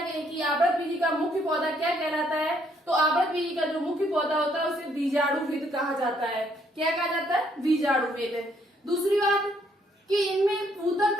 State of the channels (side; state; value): both; normal; correlation 0.69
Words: कि आवृतबीजी का मुख्य पौधा क्या कहलाता है, तो आवृतबीजी का जो मुख्य पौधा होता है उसे बीजाणुविद कहा जाता है। क्या कहा जाता है, बीजाणुविद। दूसरी बात कि इनमें ऊतक